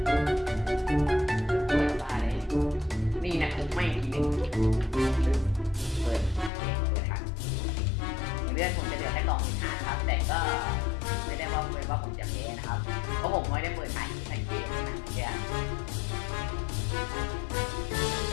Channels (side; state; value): right; drops out; at 6.5 s